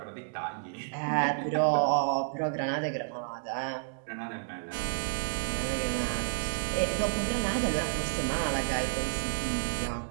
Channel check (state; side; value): silent; left; digital silence